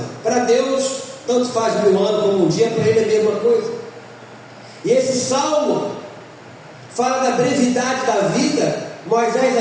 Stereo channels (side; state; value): both; identical; correlation 1.00